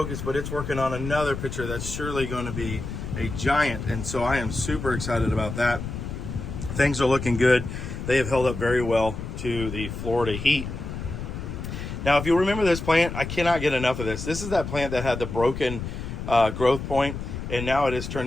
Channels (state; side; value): noise; left; rumble, 7 dB below the sound